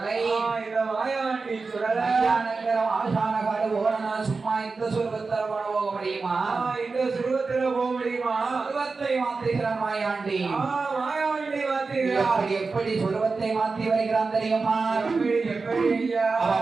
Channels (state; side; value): quieter; left; 4.2 dB